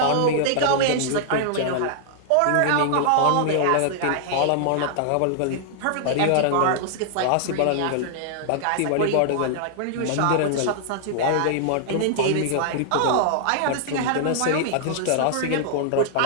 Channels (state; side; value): different; both; correlation -0.01